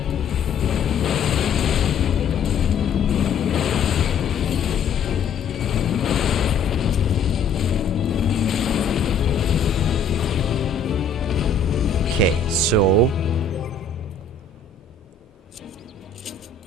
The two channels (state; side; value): quieter; right; 5.3 dB